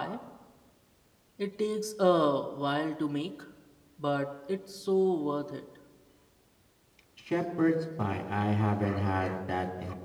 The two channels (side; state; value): both; identical; correlation 1.00